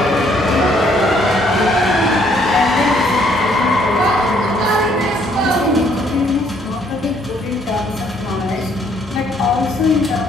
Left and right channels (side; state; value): both; normal; correlation 0.66